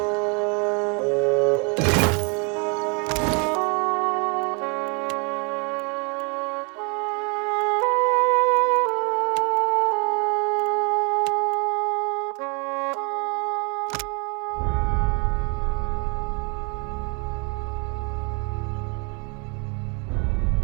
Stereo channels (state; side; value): quieter; left; 34.4 dB